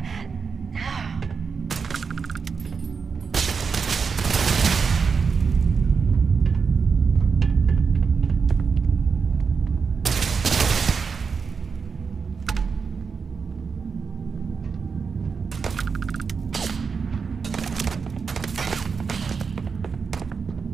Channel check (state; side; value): quieter; left; 5.5 dB